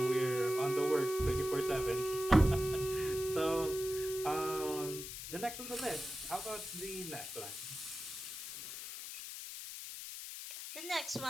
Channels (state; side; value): noise; left; hiss, 8 dB below the sound